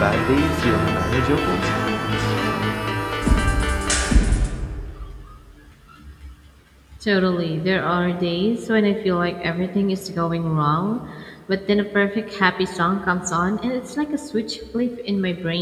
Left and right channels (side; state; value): both; identical; correlation 1.00